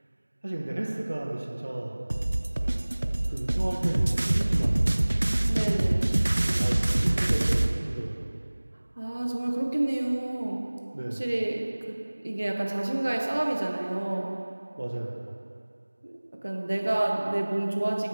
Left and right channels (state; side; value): inverted; both; correlation -1.00